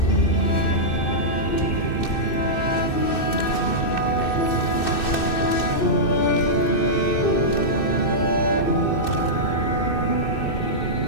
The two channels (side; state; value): right; late; 2.6 ms